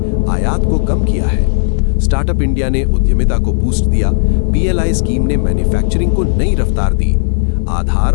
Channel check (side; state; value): right; silent; digital silence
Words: आयात को कम किया है। स्टार्टअप इंडिया ने उद्यमिता को बूस्ट दिया। PLI स्कीम ने मैन्युफैक्चरिंग को नई रफ्तार दी। आधार